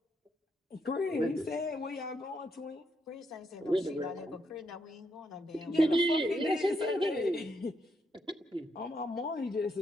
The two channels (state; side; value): normal; both; correlation 0.78